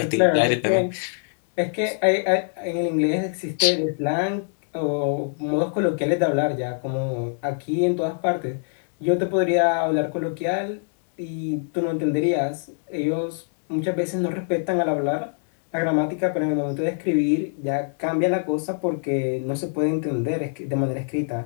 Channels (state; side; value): silent; right; digital silence